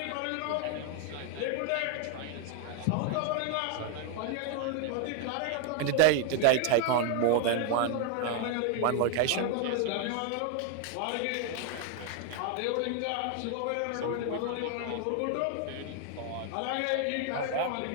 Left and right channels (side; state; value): both; different; correlation 0.01